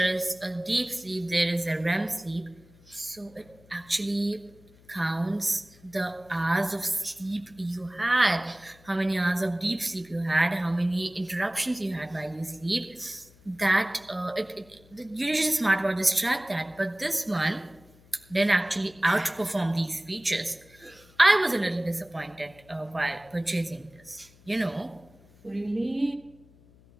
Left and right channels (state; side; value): noise; left; hum, 26 dB below the sound